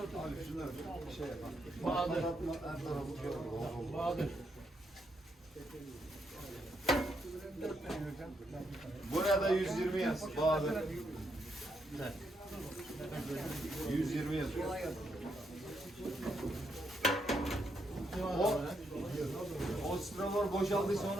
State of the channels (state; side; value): normal; both; correlation 0.78